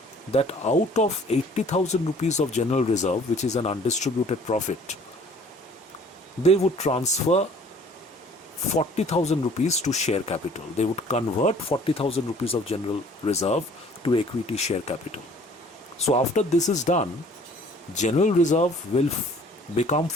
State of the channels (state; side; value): normal; both; correlation 0.54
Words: that out of 80,000 rupees of general reserve, which is an undistributed profit, they would transfer 40,000 rupees to share capital. They would convert 40,000 rupees of general reserve to equity share capital. So after this is done, general reserve will become